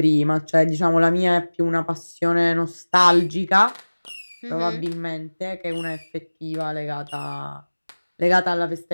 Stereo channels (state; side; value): inverted; both; correlation -1.00